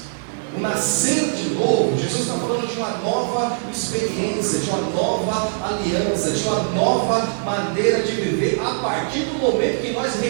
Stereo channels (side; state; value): left; silent; 59 dB below the other